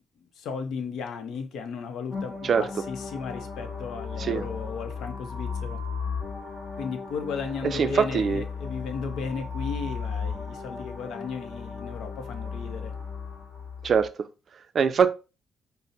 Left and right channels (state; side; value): normal; both; correlation 0.73